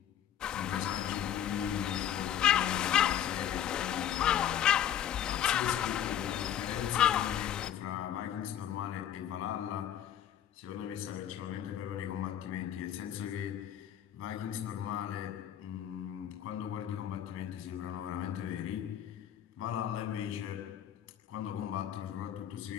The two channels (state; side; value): quieter; right; 10.3 dB